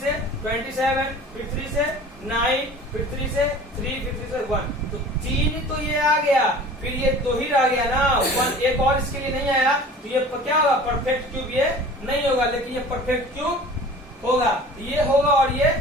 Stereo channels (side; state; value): both; normal; correlation 0.43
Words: 27, फिर 3 से 9, फिर 3 से 3, फिर 3 से 1। तो 3 तो ये आ गया, फिर ये 2 ही रह गया ना, 1 एक और इसके लिए नहीं आया। तो ये क्या होगा, परफेक्ट क्यूब ये नहीं होगा। लेकिन ये परफेक्ट क्यूब होगा, ये होगा और ये